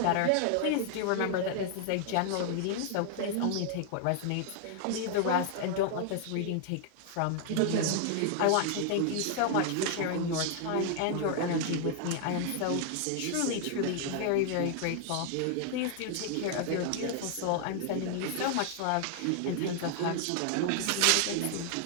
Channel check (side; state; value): both; different; correlation 0.00